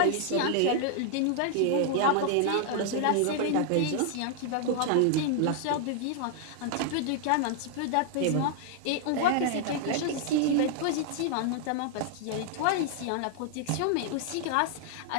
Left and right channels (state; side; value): different; both; correlation 0.00